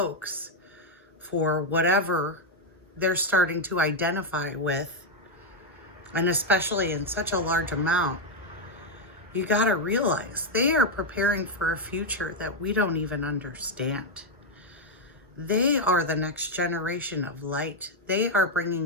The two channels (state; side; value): normal; both; correlation 0.02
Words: for whatever they're starting to identify with, and especially in such a large amount, you got to realize they are preparing for a future that we don't even understand. They are the next generation of light. They are